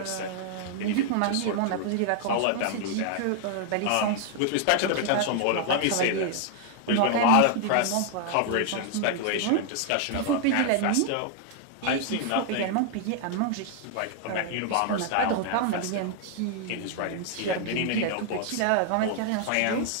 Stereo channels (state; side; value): different; both; correlation 0.00